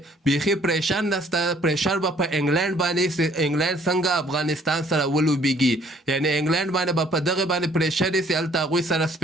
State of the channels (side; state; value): both; normal; correlation 0.60